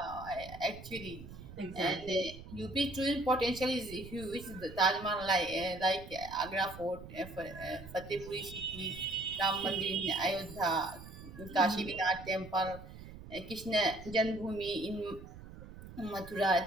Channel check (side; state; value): right; noise; rumble, 14 dB below the sound